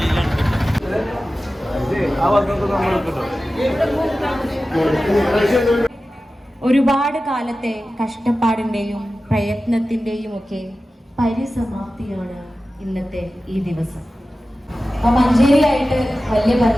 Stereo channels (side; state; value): both; normal; correlation 0.95